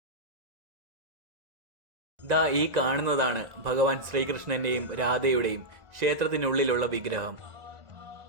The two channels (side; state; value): left; late; 1.9 ms